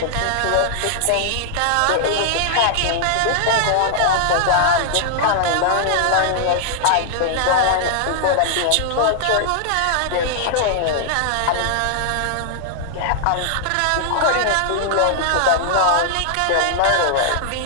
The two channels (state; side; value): different; both; correlation -0.01